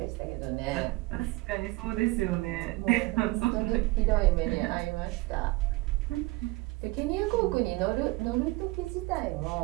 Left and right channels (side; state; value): left; quieter; 21.7 dB